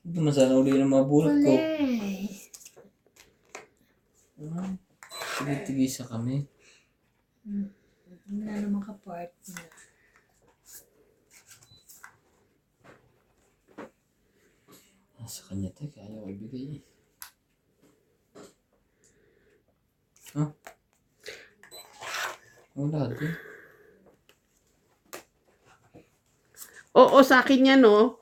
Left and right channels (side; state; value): both; identical; correlation 1.00